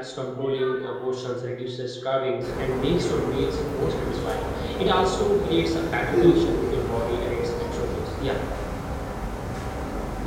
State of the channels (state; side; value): identical; both; correlation 1.00